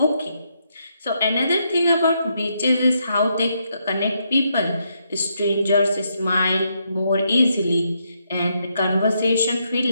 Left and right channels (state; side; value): inverted; both; correlation -0.78